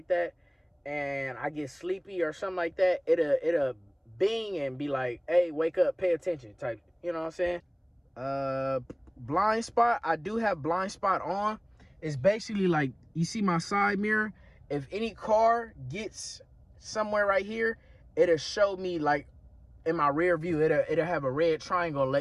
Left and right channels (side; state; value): both; identical; correlation 1.00